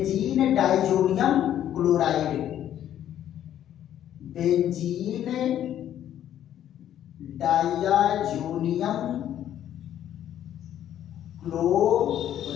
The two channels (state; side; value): quieter; right; 11.1 dB